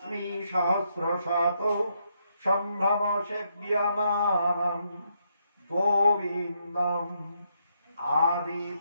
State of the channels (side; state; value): both; inverted; correlation -0.77